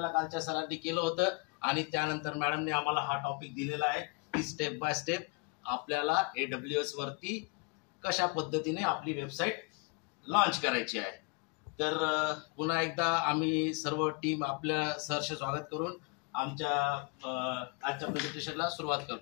कालच्या सरांनी केलं होतं आणि त्यानंतर मॅडमने आम्हाला हा टॉपिक दिलेला आहे की स्टेप बाय स्टेप आपल्याला AWS वरती कशा पद्धतीने आपली वेबसाईट लॉन्च करायची आहे. तर पुन्हा एकदा आम्ही सर्व टीम आपल्या सरचे स्वागत करून आमच्या आजच्या प्रेझेंटेशनला सुरुवात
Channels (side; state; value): right; quieter; 28.7 dB